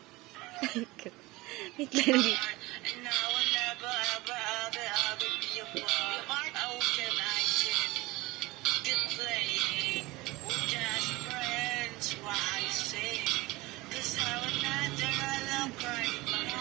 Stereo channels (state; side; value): quieter; left; 21.1 dB